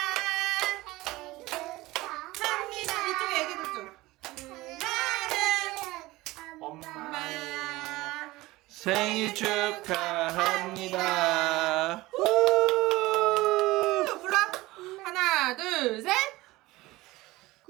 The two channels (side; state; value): left; quieter; 19.4 dB